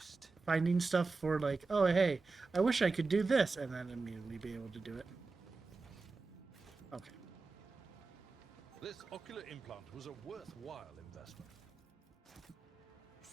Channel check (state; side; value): quieter; left; 4.0 dB